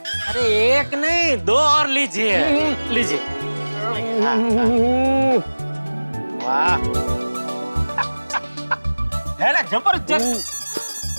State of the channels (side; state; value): both; inverted; correlation -1.00